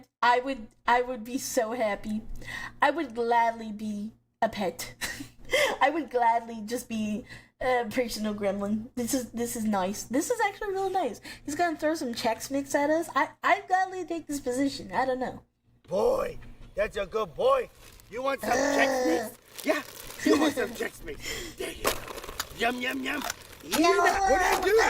be so happy. I would gladly be a pet. I would gladly just be a personal gremlin. This is nice. This is actually real nice. He's gonna throw some Chex Mix at us. I'd gladly take this position. I don't know. Boy, that's a good boy. You want some Chex Mix? Yeah, you want some Chex Mix. There you go. Yum, yum, yum. What are you doing?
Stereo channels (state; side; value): identical; both; correlation 1.00